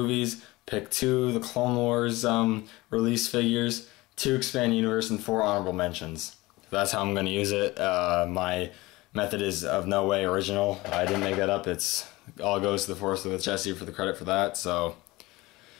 pick 2 of the Clone Wars release figures, 2 Expand Universe, and 4 honorable mentions. That's how I'm going to use it. My method is of no way original. I didn't make that up. It's all goes to the Force with Jesse for the credit for that. So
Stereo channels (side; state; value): right; quieter; 20.5 dB